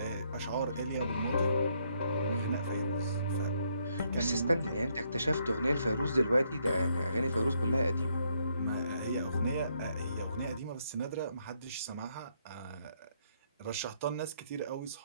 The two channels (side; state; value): both; inverted; correlation -0.73